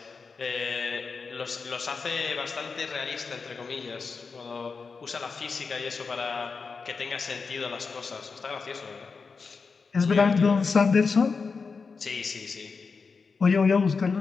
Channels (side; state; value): right; quieter; 4.9 dB